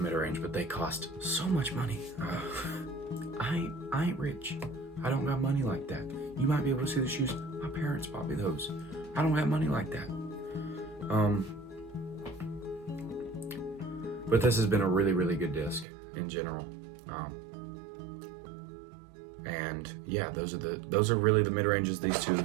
mid-range, but they cost so much money. I ain't rich. I don't got money like that. You might be able to see the shoes. My parents bought me those. I don't have money like that. But this has been a really, really good disc in general. And yeah, those are really the mid-ranges. These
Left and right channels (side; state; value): left; drops out; at 15.9 s